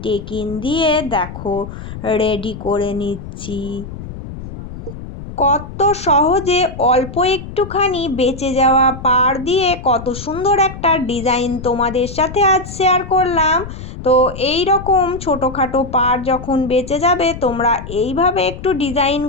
টেকিন দিয়ে দেখো রেডি করে নিচ্ছি। কত সহজে অল্প একটুখানি বেঁচে যাওয়া পাড় দিয়ে কত সুন্দর একটা ডিজাইন তোমাদের সাথে আজ শেয়ার করলাম। তো এই রকম ছোটোখাটো পাড় যখন বেঁচে যাবে তোমরা এইভাবে একটু ডিজাইন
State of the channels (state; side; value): noise; left; rumble, 11 dB below the sound